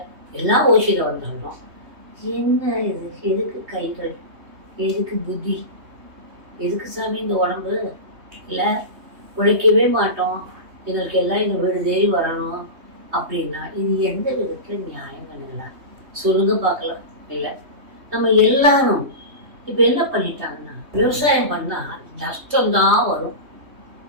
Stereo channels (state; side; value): late; left; 3.2 ms